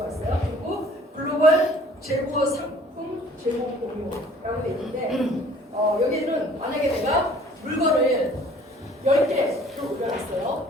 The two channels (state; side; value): normal; both; correlation 0.53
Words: 있어요. 그리고 글로벌 재고 상품 재고 공유라고 돼 있는데 여기는 만약에 내가 물건을 10개를